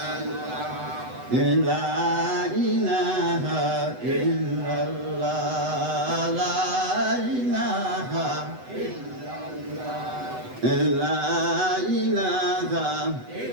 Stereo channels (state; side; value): late; left; 8.0 ms